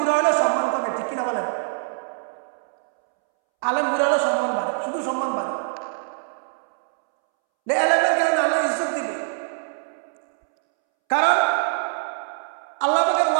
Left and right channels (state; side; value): silent; left; 63 dB below the other